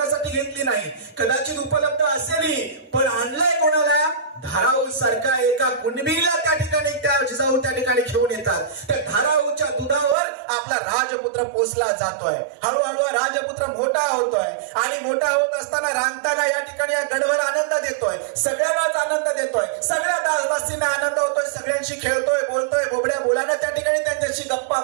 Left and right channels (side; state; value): left; drops out; at 10.2 s